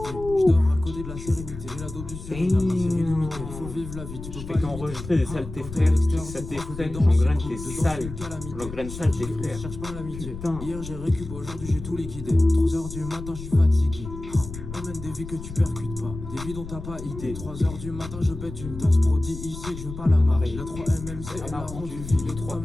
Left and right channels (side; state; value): left; noise; rumble, 11 dB below the sound